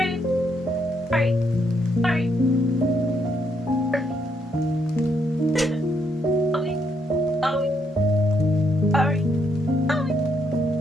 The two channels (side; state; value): both; normal; correlation 0.76